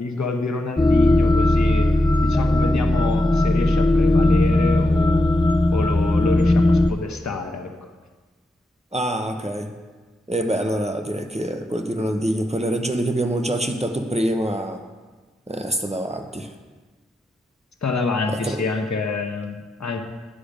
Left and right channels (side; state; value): both; normal; correlation 0.86